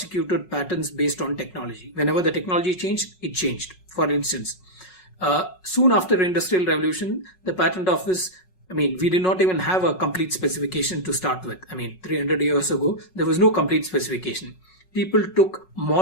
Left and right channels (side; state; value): right; late; 5.4 ms